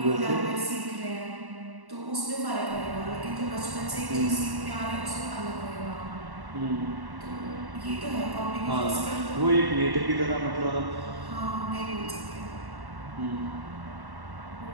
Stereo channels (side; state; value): left; late; 1.1 ms